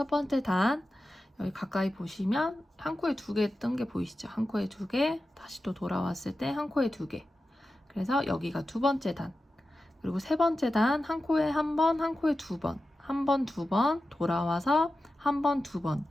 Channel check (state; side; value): normal; both; correlation 0.93